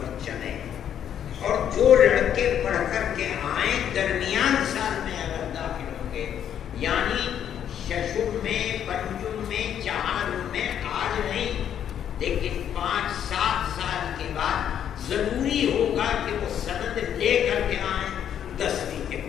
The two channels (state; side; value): quieter; right; 9.5 dB